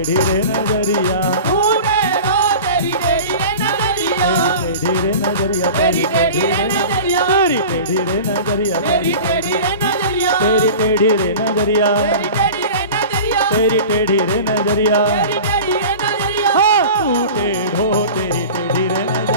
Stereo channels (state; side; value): inverted; both; correlation -0.36